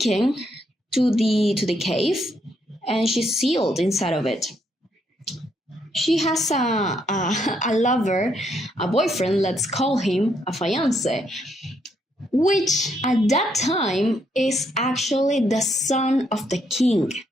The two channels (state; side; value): normal; both; correlation 0.75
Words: to the cave, and she's sealed inside of it. She has a lover, a boyfriend, let's call him a fiancé, which at that time is actually the son of the king,